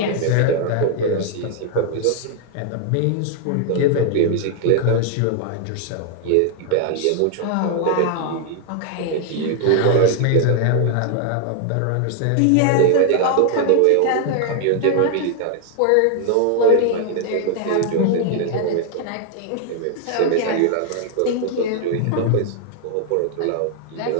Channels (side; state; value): both; different; correlation 0.00